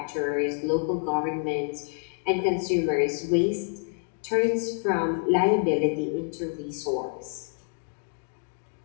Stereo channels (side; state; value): right; silent; 55 dB below the other